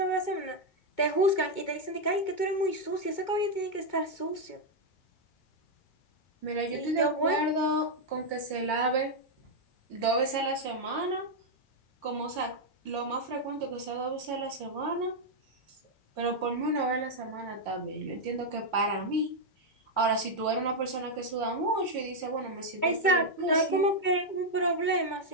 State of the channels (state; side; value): late; right; 2.2 ms